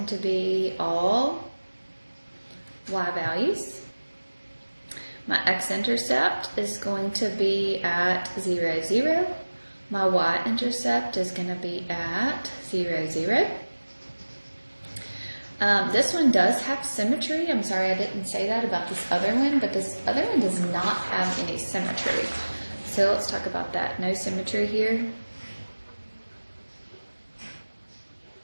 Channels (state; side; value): inverted; both; correlation -1.00